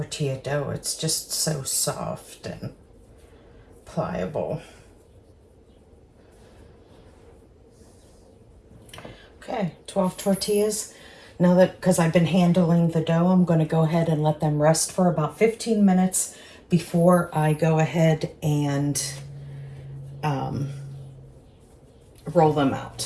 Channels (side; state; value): both; identical; correlation 1.00